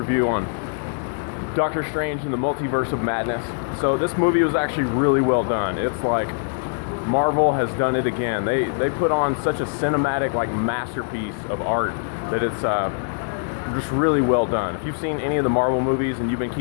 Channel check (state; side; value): silent; right; digital silence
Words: on Doctor Strange and the Multiverse of Madness. So this movie was actually really well done. It's like Marvel has done it again. They put on such a cinematic masterpiece of art that it's just really well done. If you've seen any of the Marvel movies and you've been